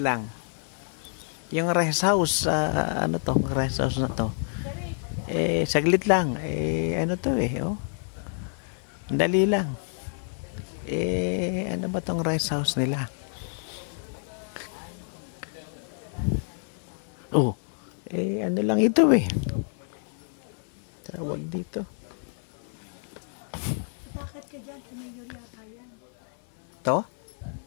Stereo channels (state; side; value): silent; right; 56 dB below the other